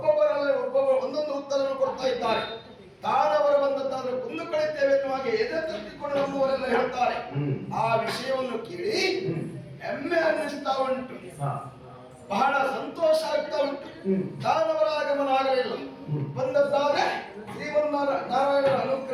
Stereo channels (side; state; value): both; identical; correlation 1.00